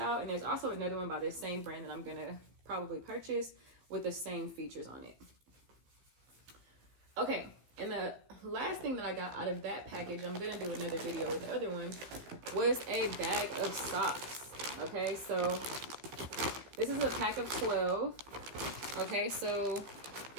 And there's also another one by this same brand that I'm going to probably purchase with the same features on it. Okay. And the last thing that I got out of that package, I'm going to do another video with the other one, was a bag of socks. Okay, so this is a pack of 12. Okay, so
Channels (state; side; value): late; left; 15 ms